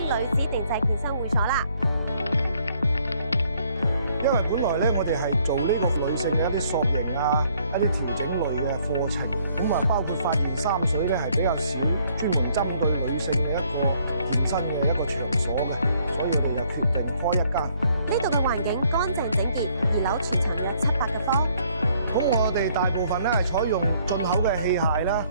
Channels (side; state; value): both; inverted; correlation -0.65